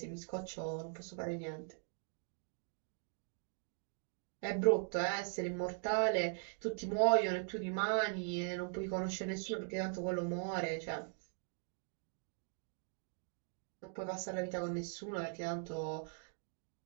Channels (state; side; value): silent; left; 51 dB below the other